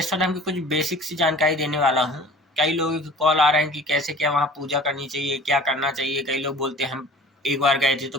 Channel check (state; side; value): normal; both; correlation 0.44